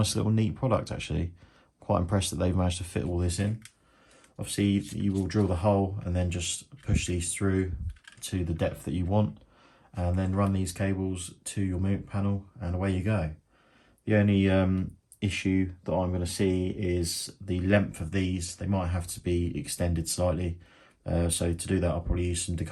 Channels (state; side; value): identical; both; correlation 1.00